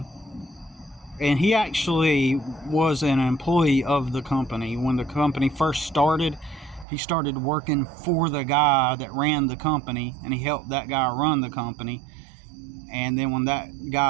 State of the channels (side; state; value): left; drops out; at 6.9 s